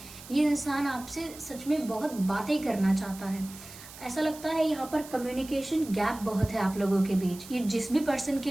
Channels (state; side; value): noise; right; hiss, 17 dB below the sound